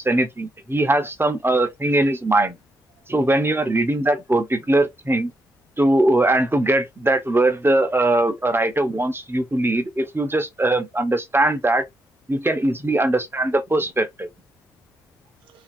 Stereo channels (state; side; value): normal; both; correlation 0.80